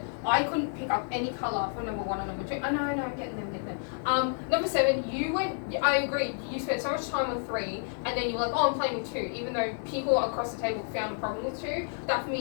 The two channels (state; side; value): silent; right; 58 dB below the other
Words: I couldn't pick up any colour for number 1 and number 2. No, I'm getting them. Number 7, I agree, you spent so much time on 3, and then you were like, oh, I'm playing with 2, even though people across the table found a problem with 2. That for